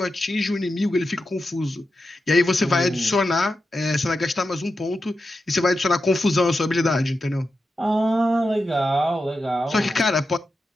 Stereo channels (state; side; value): normal; both; correlation 0.89